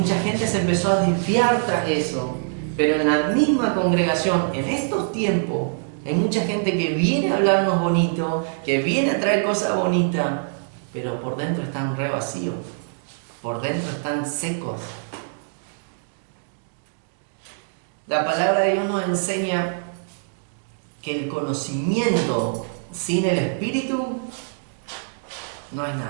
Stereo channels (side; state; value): left; silent; digital silence